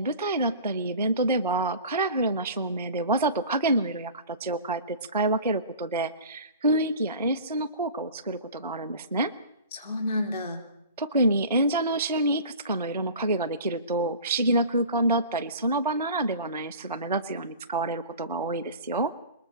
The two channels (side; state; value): both; inverted; correlation -0.39